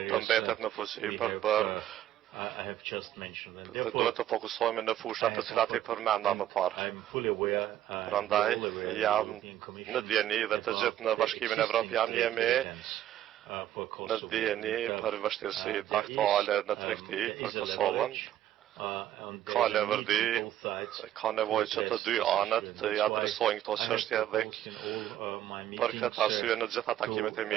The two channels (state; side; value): quieter; left; 12.2 dB